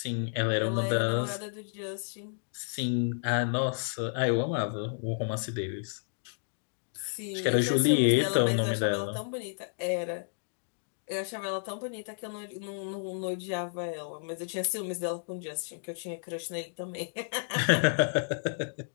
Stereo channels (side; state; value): right; silent; digital silence